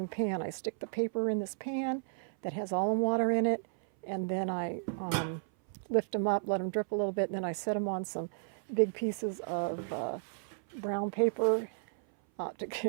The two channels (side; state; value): left; silent; 56 dB below the other